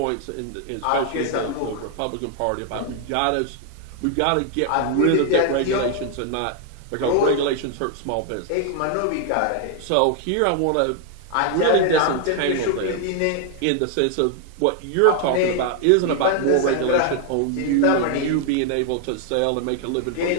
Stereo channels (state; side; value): different; both; correlation 0.00